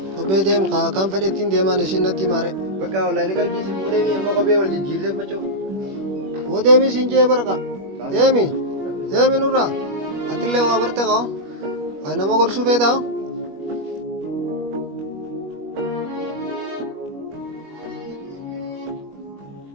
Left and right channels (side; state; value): left; late; 21 ms